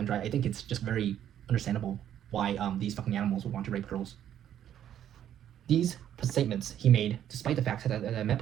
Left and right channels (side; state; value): left; quieter; 10.5 dB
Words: dry. I think it's just very understandable why these fucking animals would want to rape girls. These statements he made, despite the fact that the Met